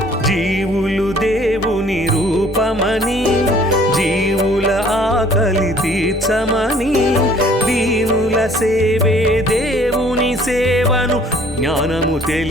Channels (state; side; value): normal; both; correlation 0.56